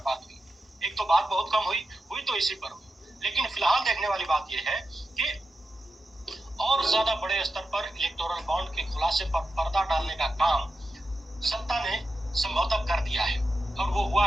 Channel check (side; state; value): both; normal; correlation 0.90